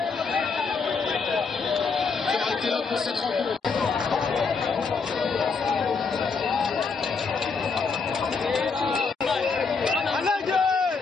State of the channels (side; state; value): right; quieter; 4.9 dB